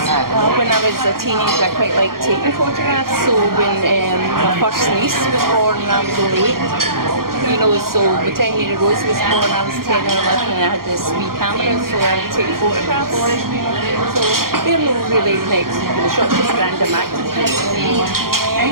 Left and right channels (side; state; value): left; late; 0.92 ms